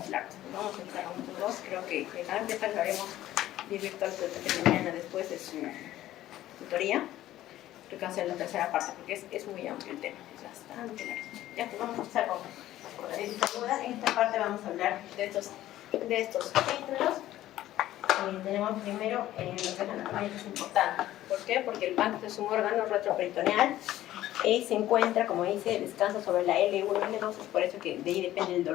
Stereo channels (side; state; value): right; quieter; 14.1 dB